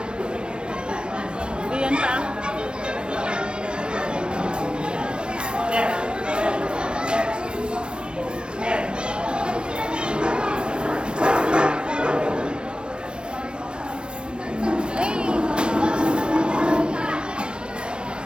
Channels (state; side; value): late; left; 0.055 ms